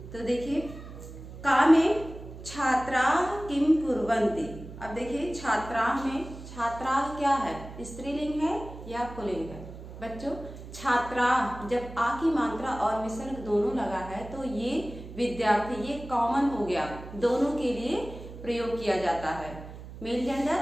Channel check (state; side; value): noise; right; hum, 13 dB below the sound